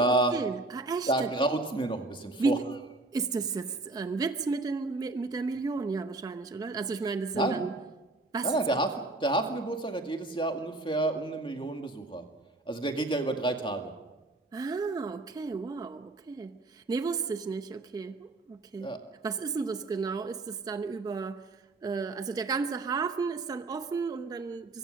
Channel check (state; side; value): quieter; left; 3.0 dB